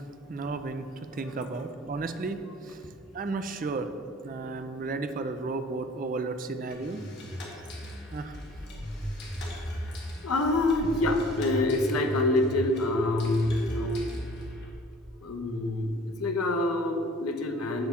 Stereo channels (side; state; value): both; normal; correlation 0.48